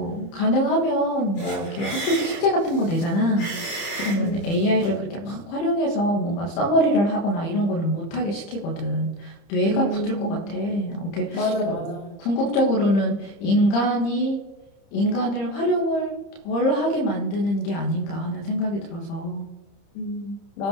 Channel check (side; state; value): right; late; 30 ms